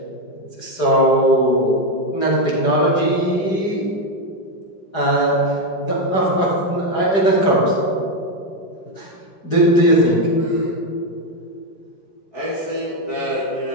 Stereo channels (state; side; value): late; right; 4.9 ms